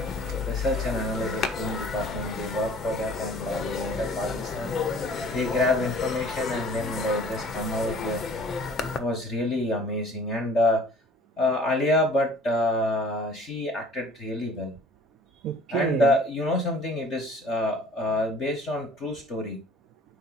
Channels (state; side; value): normal; both; correlation 0.50